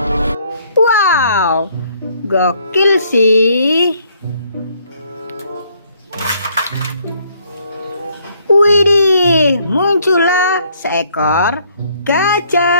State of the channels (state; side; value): inverted; both; correlation -0.65